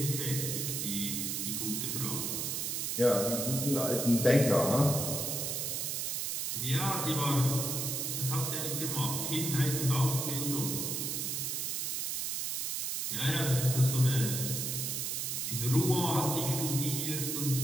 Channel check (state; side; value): noise; right; hiss, 1 dB below the sound